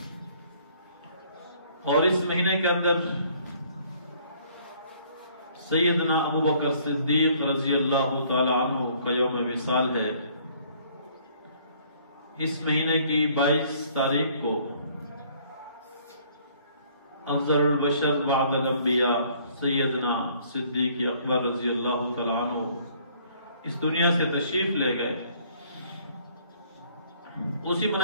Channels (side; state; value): both; inverted; correlation -0.60